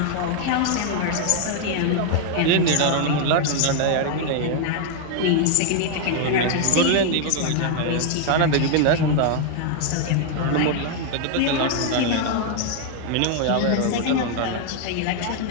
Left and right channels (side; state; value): both; different; correlation 0.00